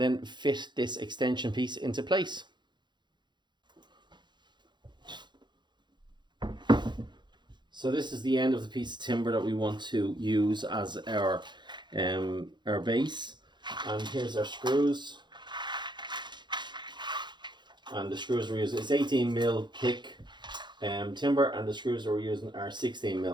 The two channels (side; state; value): left; late; 0.22 ms